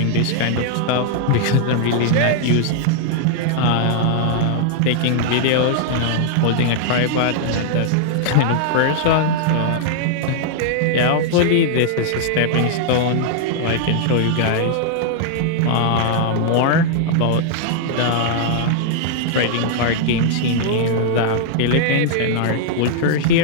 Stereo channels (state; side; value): different; both; correlation -0.01